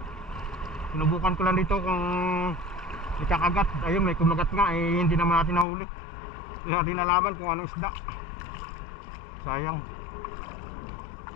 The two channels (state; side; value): drops out; right; at 5.7 s